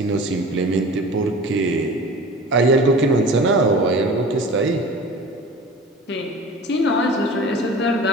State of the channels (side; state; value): both; normal; correlation 0.39